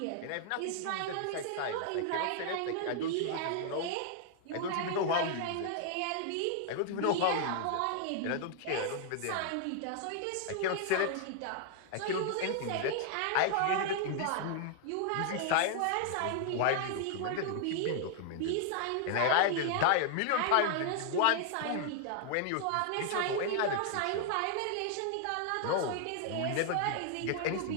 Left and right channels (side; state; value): both; different; correlation 0.00